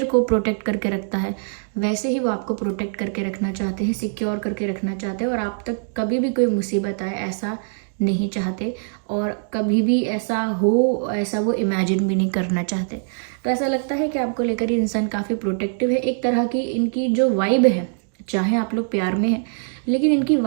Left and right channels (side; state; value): left; silent; digital silence